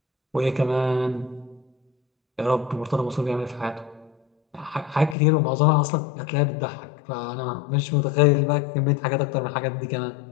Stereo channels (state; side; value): drops out; right; at 5.2 s